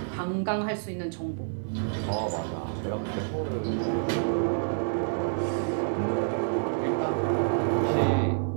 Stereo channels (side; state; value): left; silent; digital silence